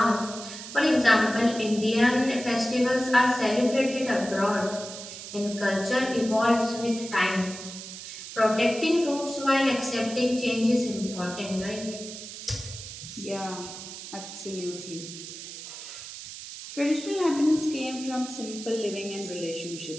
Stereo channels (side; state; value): right; noise; hiss, 11 dB below the sound